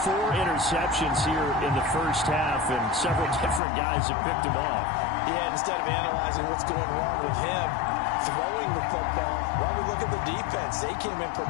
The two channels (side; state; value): right; drops out; at 3.6 s